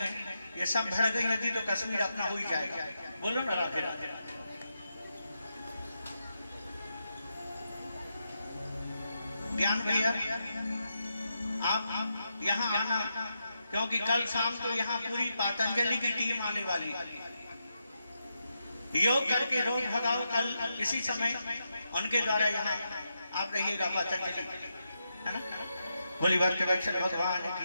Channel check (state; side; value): inverted; both; correlation -0.85